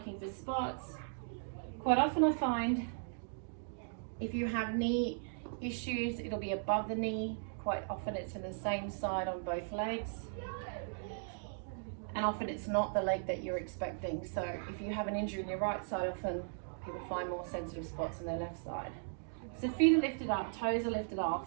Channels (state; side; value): silent; left; digital silence